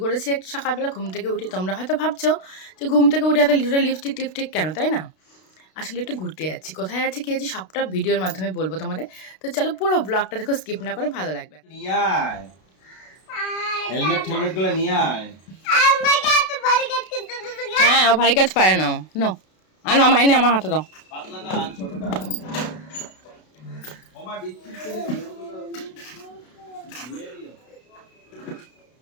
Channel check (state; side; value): late; right; 32 ms